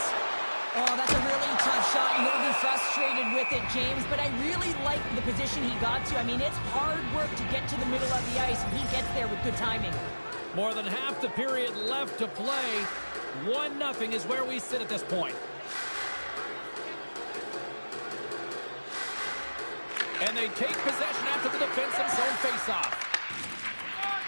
Oh, that's a really tough shot, and he'll be frustrated with it, James, but I really like the position he got to. I mean, it's hard work to get to the middle of the ice, and he gets there with good timing. More than half the period left to play. 1-0 is where we sit at this point. And they take possession after the defensive zone faceoff.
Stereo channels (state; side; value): inverted; both; correlation -1.00